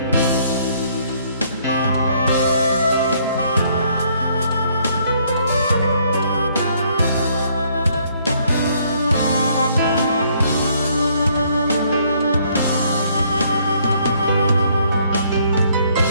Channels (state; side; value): inverted; both; correlation -0.66